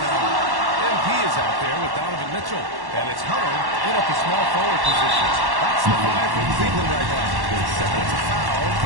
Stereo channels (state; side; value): late; left; 1.1 ms